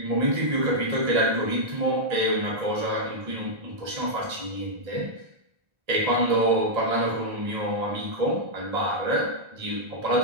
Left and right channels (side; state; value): left; late; 1.3 ms